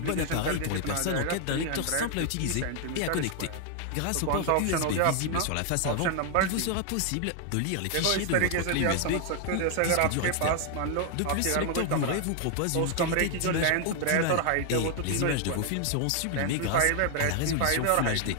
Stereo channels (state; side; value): different; both; correlation 0.00